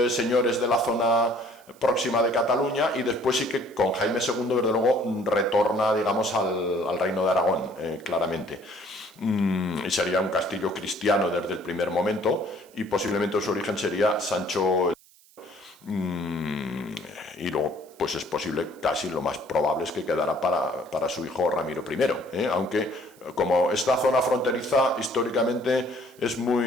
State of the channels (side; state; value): right; noise; hiss, 27 dB below the sound